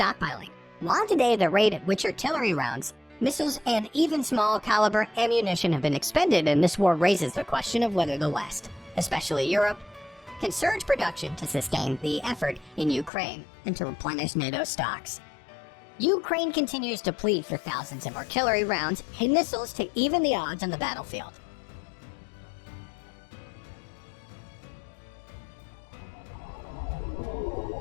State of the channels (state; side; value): drops out; right; at 13.1 s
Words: while today the rate at which artillery rounds, missiles, and even small caliber ammunition have been expended in this war raises the question of whether the West, especially Europe, can surge production to sustain the effort in Ukraine and to replenish NATO stocks. Ukraine continues to plead for thousands of artillery rounds and missiles to even the odds on the battlefield.